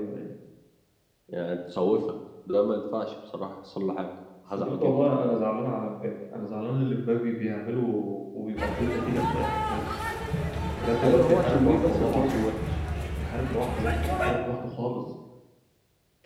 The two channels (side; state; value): both; identical; correlation 1.00